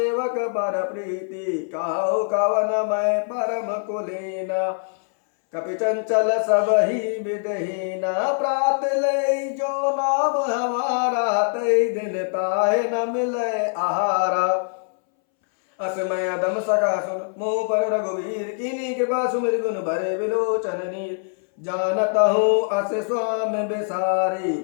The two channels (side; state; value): right; silent; 62 dB below the other